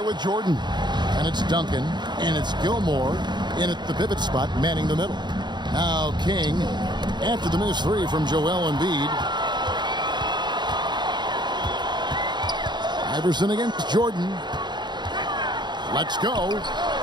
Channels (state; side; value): late; left; 0.21 ms